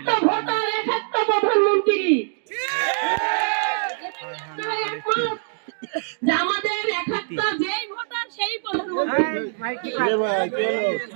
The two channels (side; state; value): left; silent; digital silence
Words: ভোটার, এক একটা প্রধানমন্ত্রী। যে আমাদের এক একটা যেই ভোটার সেই প্রধানমন্ত্রী।